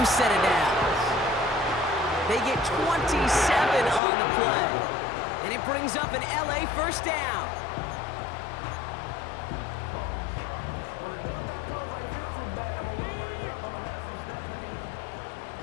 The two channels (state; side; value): drops out; right; at 4.0 s